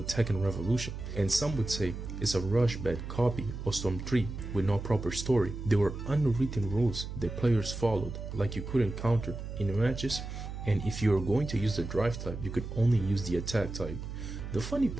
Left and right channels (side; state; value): right; noise; hum, 8 dB below the sound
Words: Tekken Revolution, and some would say it's a rush bad copy of Storm 3 with no proper story. There were unwritten rules that players followed, like you couldn't counter in matches, and if you were going to use the drive type, you could only use the attack type. The funny